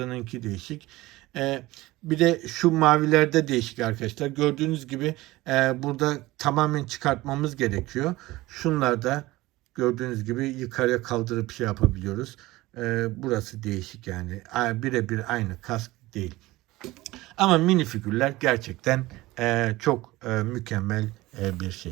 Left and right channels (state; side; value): quieter; left; 19.0 dB